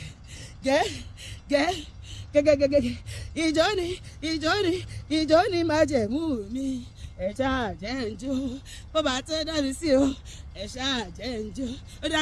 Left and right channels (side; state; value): both; identical; correlation 1.00